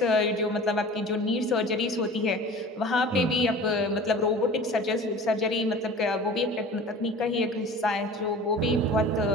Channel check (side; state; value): both; normal; correlation 0.40